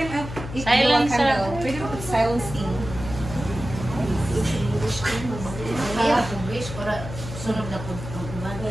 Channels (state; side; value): noise; left; hum, 9 dB below the sound